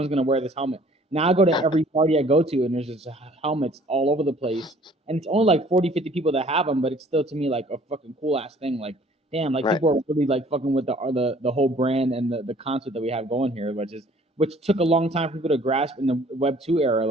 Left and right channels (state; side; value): normal; both; correlation 0.55